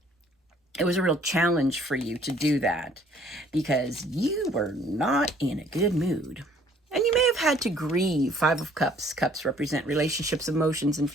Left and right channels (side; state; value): both; normal; correlation 0.59